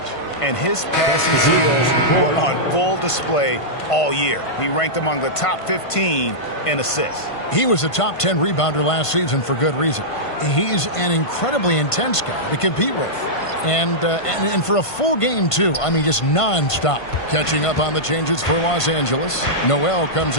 And his passing skills were on full display all year. He ranked among the top 15 in assists. He was a top 10 rebounder last season for good reason. He's an incredibly intense guy to compete with. And for a full game, too. I mean, just nonstop. Catching up on the changes for Los Angeles. Noel comes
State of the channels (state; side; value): late; right; 1.5 ms